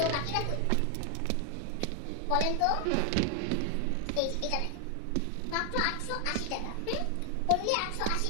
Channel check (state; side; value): different; both; correlation 0.00